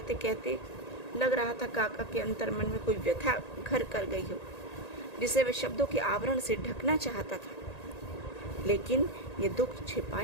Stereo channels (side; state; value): right; late; 1.9 ms